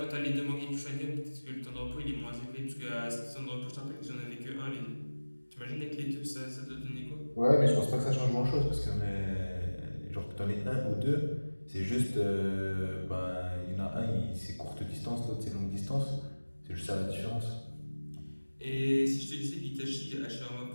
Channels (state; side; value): inverted; both; correlation -1.00